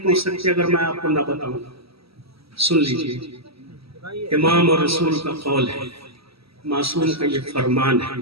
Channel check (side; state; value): left; late; 0.76 ms